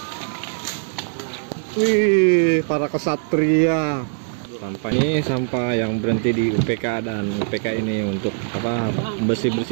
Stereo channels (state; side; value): silent; left; digital silence